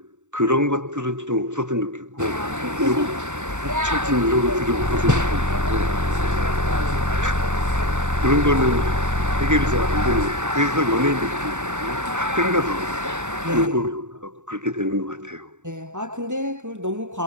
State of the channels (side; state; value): left; late; 0.84 ms